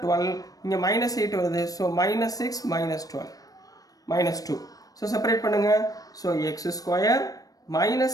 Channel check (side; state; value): right; late; 0.18 ms